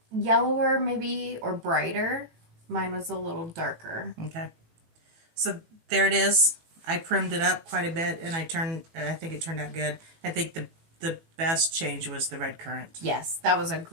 yellower maybe, or brighter. Mine was a little darker. Okay. So there it is. I primmed it up quite a bit, and I think it turned out good. I think the the best change was the red currant. Yes, that was a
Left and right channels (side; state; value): left; late; 18 ms